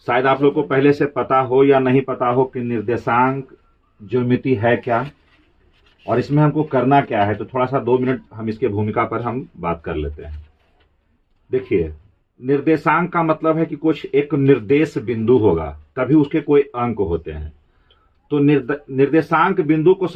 शायद आप लोग को पहले से पता हो या नहीं पता हो कि निर्देशांक ज्योमेट्री है क्या और इसमें हमको करना क्या है। तो थोड़ा सा 2 मिनट हम इसके भूमिका पर हम बात कर लेते हैं। देखिए, निर्देशांक का मतलब है कि कुछ एक निर्देश बिंदु होगा, तभी उसके कोई अंक होते हैं। तो निर्देशांक बिंदु को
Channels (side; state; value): both; identical; correlation 1.00